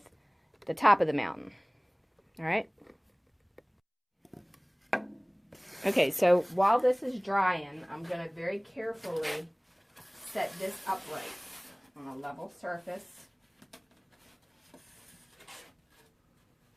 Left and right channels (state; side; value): identical; both; correlation 1.00